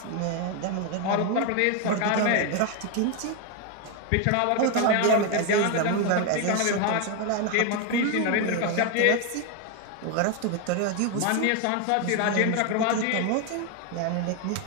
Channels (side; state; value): both; different; correlation 0.01